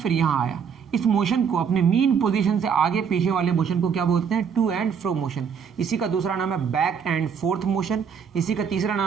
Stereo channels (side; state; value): left; quieter; 6.9 dB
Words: यहाँ आया। इस मोशन को, अपने मीन पोजीशन से आगे पीछे वाले मोशन को क्या बोलते हैं? To and fro motion. इसी का दूसरा नाम है बैक एंड फोर्थ मोशन। इसी का तीसरा